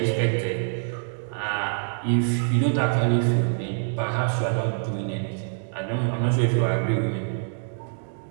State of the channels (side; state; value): left; silent; digital silence